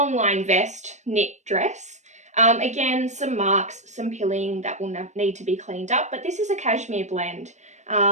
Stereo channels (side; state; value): left; late; 0.34 ms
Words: line vest, knit dress. Again, some marks, some pilling that will need to be cleaned up, but this is a cashmere blend.